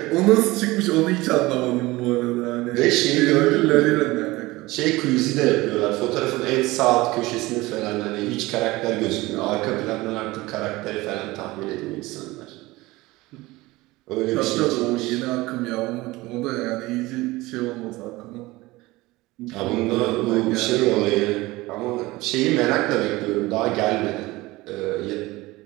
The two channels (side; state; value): left; quieter; 20.3 dB